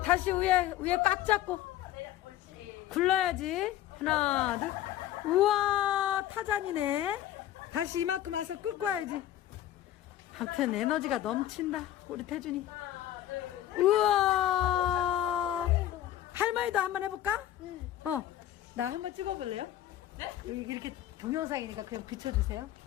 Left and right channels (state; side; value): quieter; right; 12.6 dB